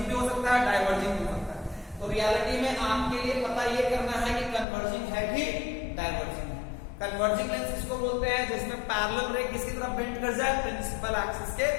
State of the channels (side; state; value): right; drops out; at 4.7 s